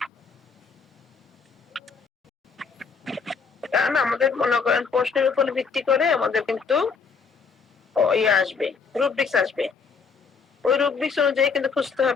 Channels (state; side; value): quieter; right; 5.4 dB